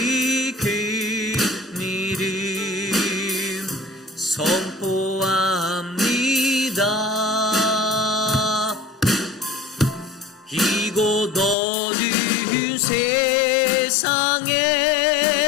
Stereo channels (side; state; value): right; drops out; at 11.6 s